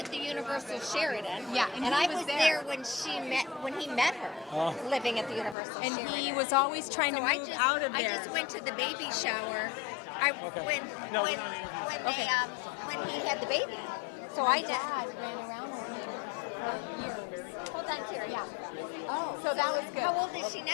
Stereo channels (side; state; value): right; drops out; at 5.6 s